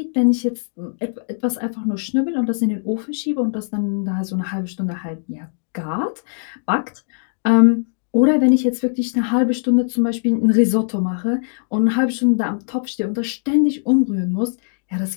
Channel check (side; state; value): right; silent; digital silence